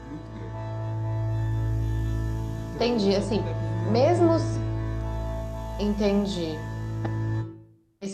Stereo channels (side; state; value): both; identical; correlation 1.00